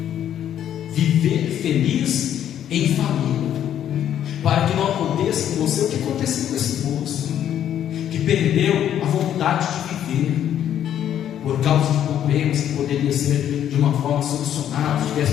Viver feliz em família, para que não aconteça com você o que aconteceu com esse moço, que perdeu a vontade de viver por causa de problemas que poderia ser de uma forma solucionada se tivesse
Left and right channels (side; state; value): right; quieter; 10.4 dB